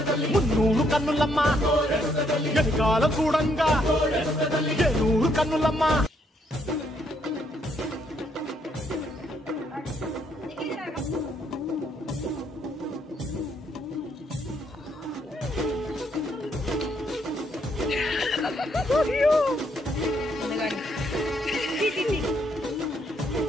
మున్నూరు కన్నులమ్మా, వెనుకాల చూడంగా ఏనూరు కన్నులమ్మా.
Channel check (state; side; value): normal; both; correlation 0.72